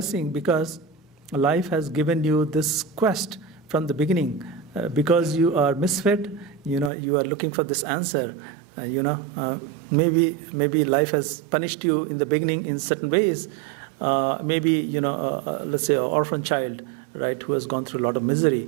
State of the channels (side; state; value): left; drops out; at 6.9 s